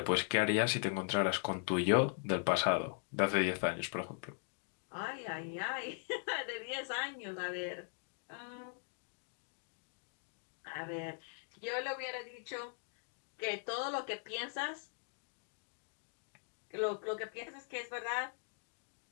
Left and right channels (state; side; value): silent; right; 51 dB below the other